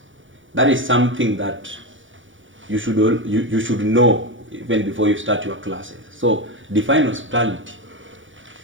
that is something that you should know even before you start your classes. So define hospitality.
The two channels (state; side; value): late; left; 0.56 ms